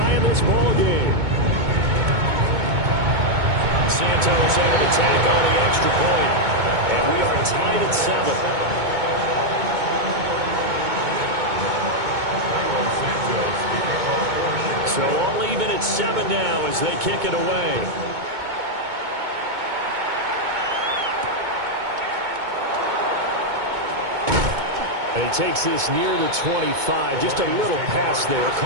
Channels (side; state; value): left; late; 2.2 ms